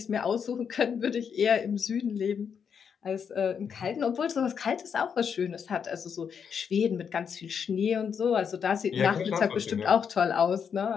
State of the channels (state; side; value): quieter; right; 7.0 dB